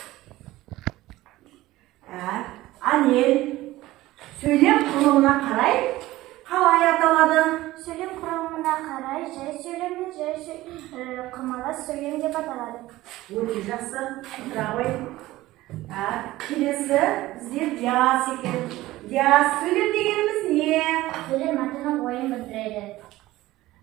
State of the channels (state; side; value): quieter; left; 17.2 dB